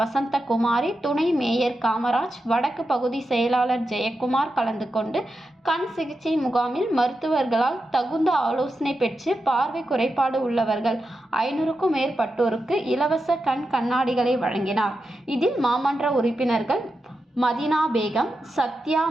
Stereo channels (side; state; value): both; normal; correlation 0.89